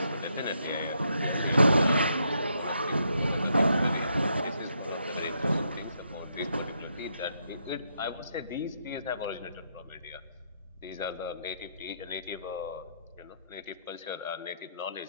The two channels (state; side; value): inverted; both; correlation -0.76